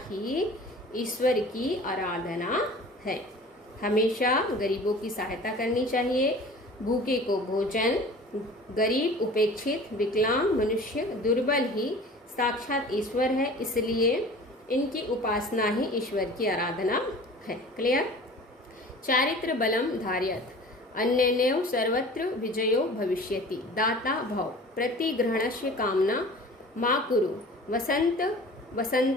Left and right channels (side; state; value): both; normal; correlation 0.42